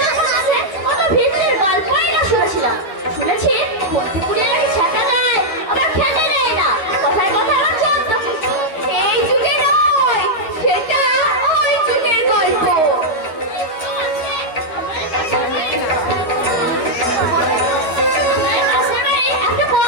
যখন আসে, কত ভিড়ের গল্পই না শুনেছিলাম। শুনেছি ভর্তিপুরে নাকি ছেঁকা দেয়, আবার খেতে দেয় না। কথায় কথায় আমার চোদ্দ কিছু। এই যুগে নয়, সেটা ওই যুগের গল্প। আমার পাশের বাড়ি একটা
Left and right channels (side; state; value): right; late; 13 ms